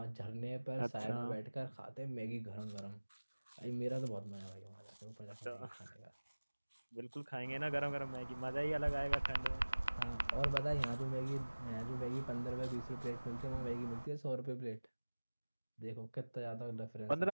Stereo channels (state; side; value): inverted; both; correlation -1.00